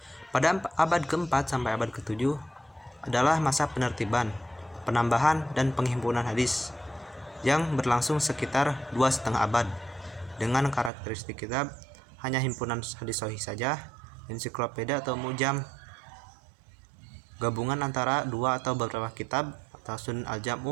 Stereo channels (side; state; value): left; drops out; at 10.9 s